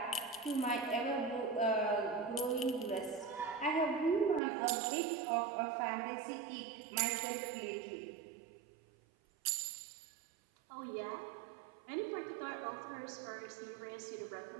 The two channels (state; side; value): drops out; left; at 4.4 s